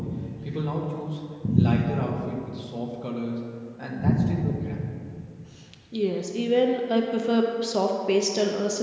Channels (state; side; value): identical; both; correlation 1.00